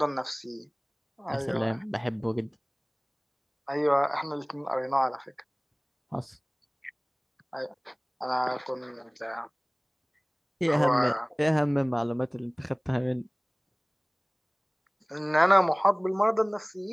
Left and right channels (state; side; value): identical; both; correlation 1.00